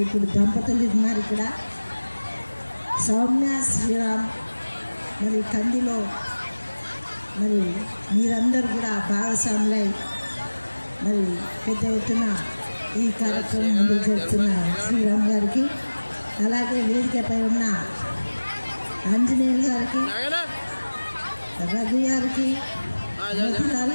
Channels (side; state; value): both; inverted; correlation -1.00